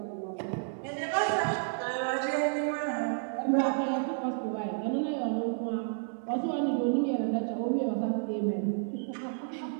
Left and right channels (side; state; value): left; silent; digital silence